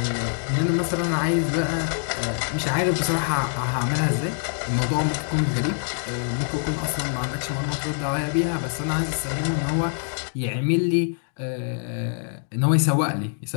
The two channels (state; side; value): silent; right; 62 dB below the other